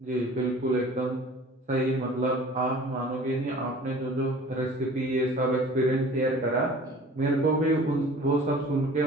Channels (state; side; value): normal; both; correlation 0.46